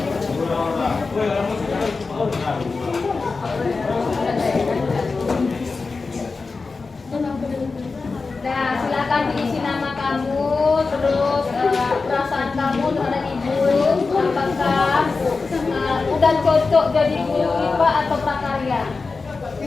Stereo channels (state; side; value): quieter; right; 4.2 dB